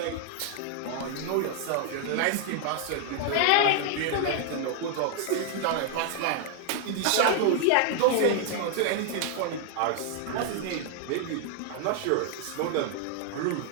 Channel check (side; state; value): both; different; correlation 0.00